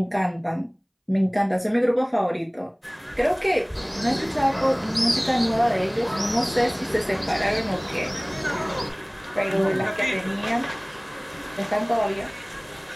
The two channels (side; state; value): both; identical; correlation 1.00